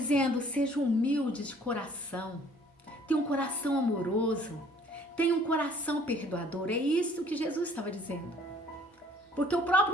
seja humilde de coração, tenha um coração amoroso, tenha um coração perdoador. É isso que Jesus estava dizendo. Porque o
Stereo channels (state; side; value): normal; both; correlation 0.56